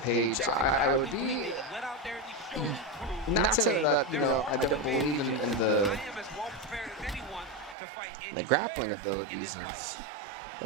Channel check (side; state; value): left; drops out; at 7.8 s